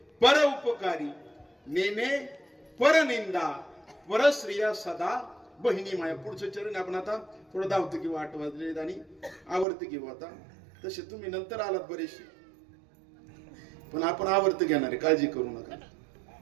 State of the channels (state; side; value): drops out; left; at 9.7 s